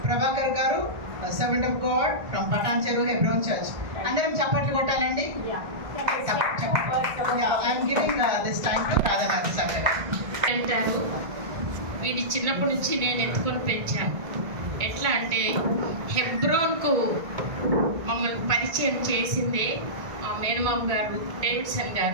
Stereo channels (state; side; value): late; left; 2.2 ms